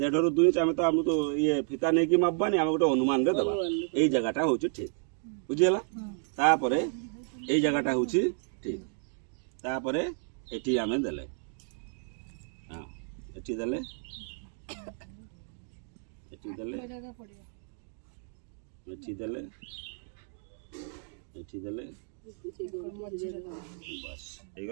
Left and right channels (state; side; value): silent; left; 57 dB below the other